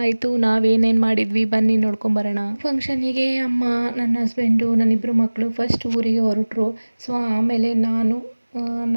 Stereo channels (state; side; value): inverted; both; correlation -1.00